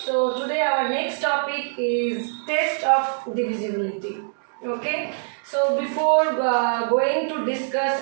So today our next topic is test of divisibility. Okay. So before going to discuss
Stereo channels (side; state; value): left; silent; digital silence